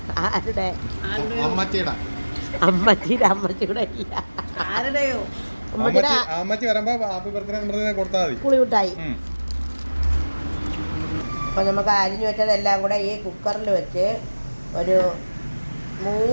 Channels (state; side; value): inverted; both; correlation -1.00